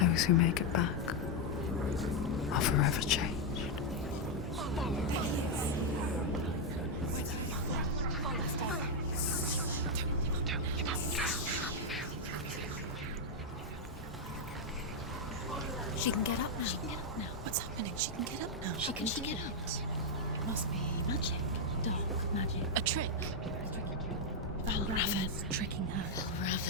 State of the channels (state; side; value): normal; both; correlation 0.00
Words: who make it back are forever changed. She can get up now. She can get up now. What's happening? She can get up now. How can she get up? Must be magic. Dark magic. A trick. Valravn's tricking her.